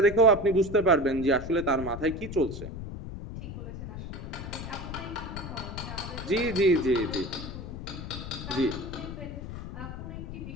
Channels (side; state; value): left; noise; rumble, 8 dB below the sound